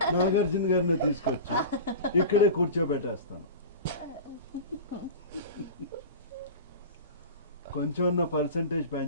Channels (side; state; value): both; inverted; correlation -0.31